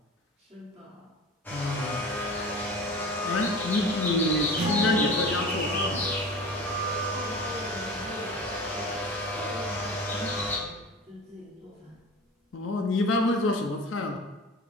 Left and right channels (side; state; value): both; normal; correlation 0.35